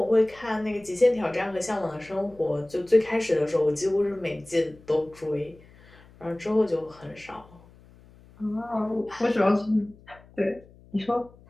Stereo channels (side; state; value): left; noise; hum, 25 dB below the sound